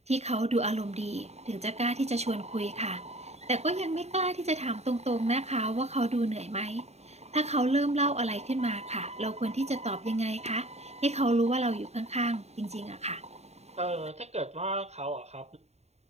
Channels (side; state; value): left; late; 0.31 ms